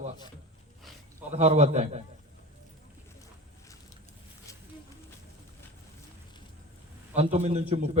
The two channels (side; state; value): both; normal; correlation 0.34